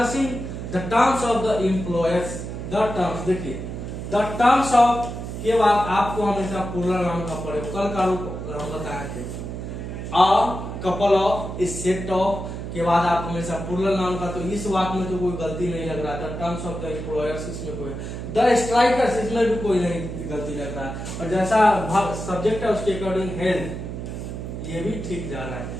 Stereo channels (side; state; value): right; noise; hum, 7 dB below the sound